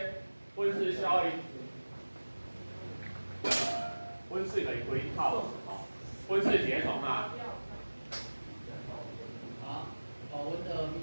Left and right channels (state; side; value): inverted; both; correlation -1.00